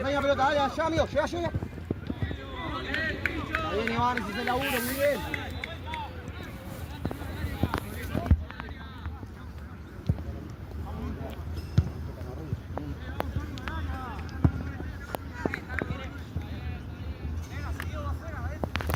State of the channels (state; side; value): identical; both; correlation 1.00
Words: pelota, dale, allá, amigo, llega. Está bien, Iván, ese es el laburo, muy bien.